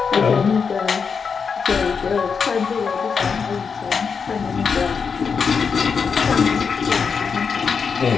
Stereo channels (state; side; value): quieter; right; 5.8 dB